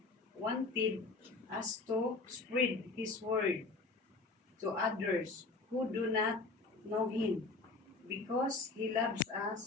wanted us to spread His word to others who do not know Him, because He loves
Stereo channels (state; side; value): quieter; right; 3.6 dB